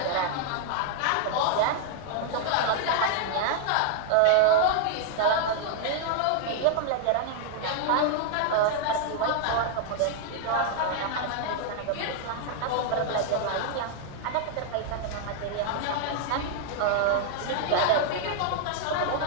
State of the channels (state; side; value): different; both; correlation -0.01